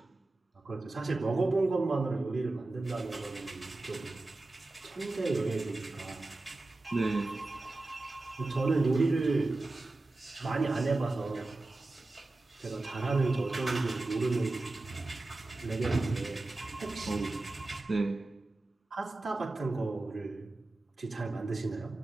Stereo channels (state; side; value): quieter; left; 3.0 dB